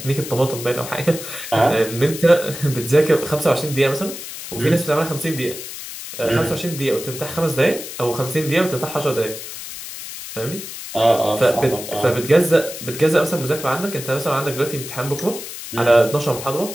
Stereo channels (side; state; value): left; noise; hiss, 10 dB below the sound